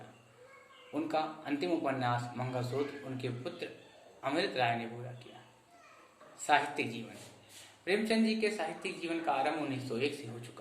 उनका अंतिम उपन्यास मंगलसूत्र उनके पुत्र अमृत राय ने पूरा किया। साहित्यिक जीवन। प्रेमचंद जी के साहित्यिक जीवन का आरंभ 1901 से हो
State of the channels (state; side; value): identical; both; correlation 1.00